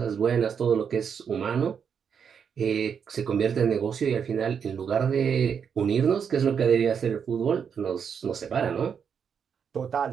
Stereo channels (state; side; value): quieter; left; 7.1 dB